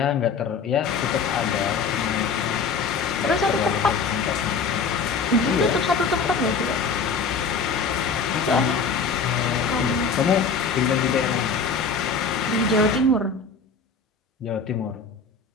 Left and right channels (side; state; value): right; quieter; 5.0 dB